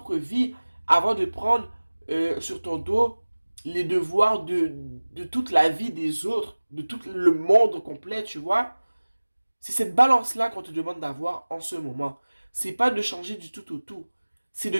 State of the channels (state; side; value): inverted; both; correlation -1.00